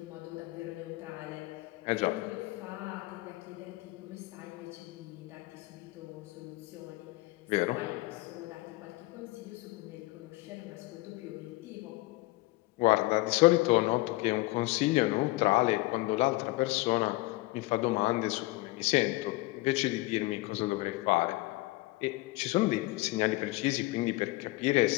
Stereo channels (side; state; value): right; quieter; 20.7 dB